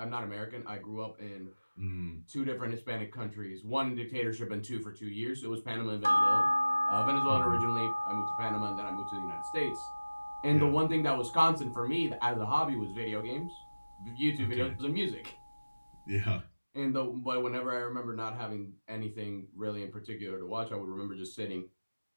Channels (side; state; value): both; inverted; correlation -1.00